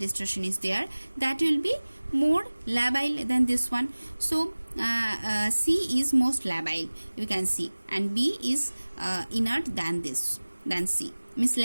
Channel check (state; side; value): inverted; both; correlation -1.00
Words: is there, that will be more labile than this one. So C is most labile, you can see, and B is inert than this, than C, means